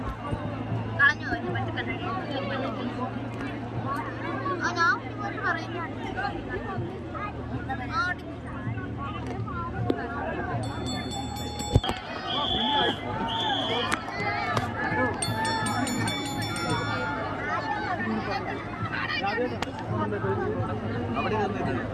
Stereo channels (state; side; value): identical; both; correlation 1.00